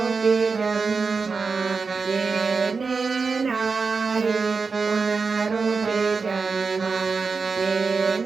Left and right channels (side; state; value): left; quieter; 4.7 dB